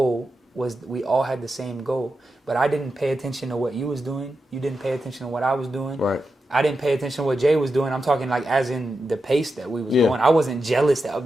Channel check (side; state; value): both; normal; correlation 0.89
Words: was, we all had the same goal. But I didn't pay attention to what you was doing. You didn't pay attention to what I was doing. Right. I didn't pay attention to what Jay was doing. I'm talking like as in the pace that we was going. I wasn't jealous that,